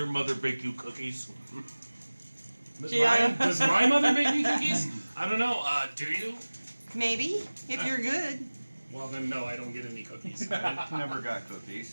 mother bake you cookies? Does my mother make me cookies? I don't know. Do you? Maybe, if you're good. Well, then no, I don't get any cookies. Never got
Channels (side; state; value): both; inverted; correlation -1.00